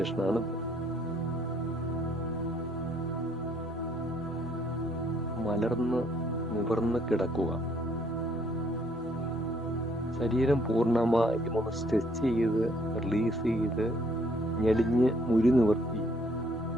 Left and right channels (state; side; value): normal; both; correlation 0.65